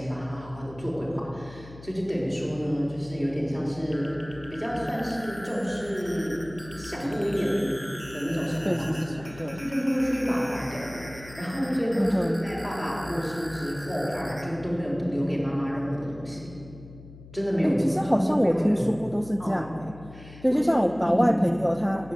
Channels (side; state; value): left; noise; hum, 18 dB below the sound